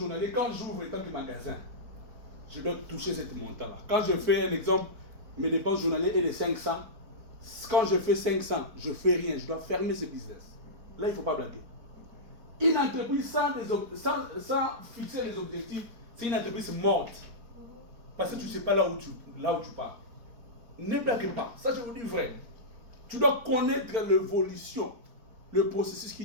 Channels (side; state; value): left; late; 4.5 ms